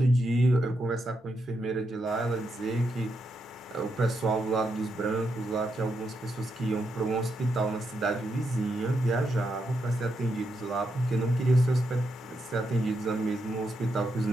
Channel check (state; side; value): normal; both; correlation 0.82